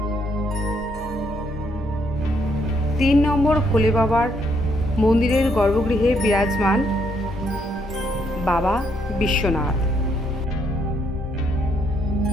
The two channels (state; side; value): normal; both; correlation 0.73